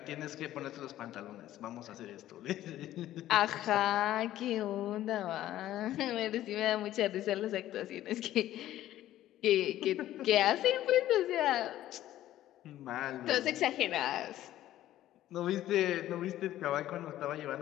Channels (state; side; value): quieter; right; 13.6 dB